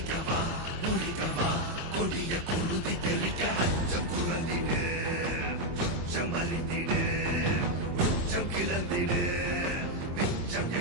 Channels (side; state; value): left; late; 23 ms